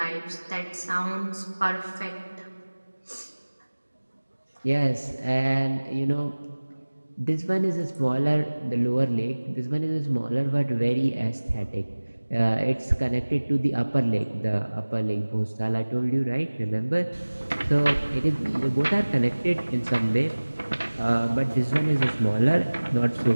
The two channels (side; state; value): both; inverted; correlation -1.00